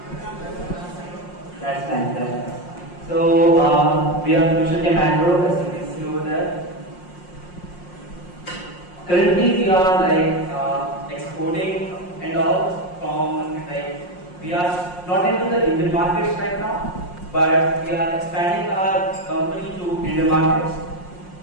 That's nice. So, we are Future Chem Agro, as you can see over there. Currently, we are exporting and all from we are not into the Indian markets right now, but we are expanding our company to Indian markets.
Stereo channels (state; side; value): late; right; 5.6 ms